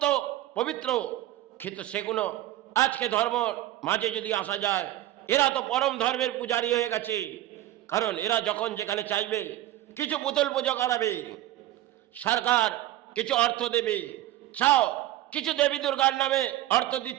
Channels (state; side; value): quieter; left; 14.5 dB